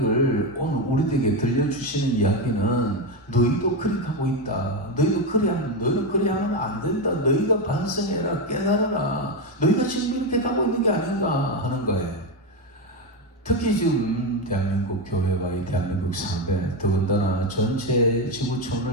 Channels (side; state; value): both; normal; correlation 0.11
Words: 오늘 우리에게 들려주시는 이야기는 너희도 그렇게 하고 있다. 너희는 그래 하면 안 된다. 너희가 반성해라, 깨달아라. 너희가 지금 이렇게 가고 있는 게 아닌가 하는 거예요. 특히 지금 대한민국 교회와 이 대한민국 사회, 더군다나 전체